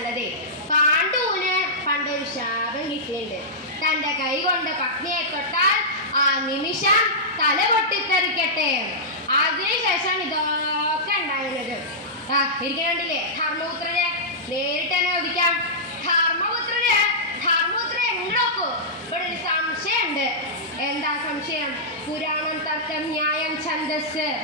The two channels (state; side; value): normal; both; correlation -0.13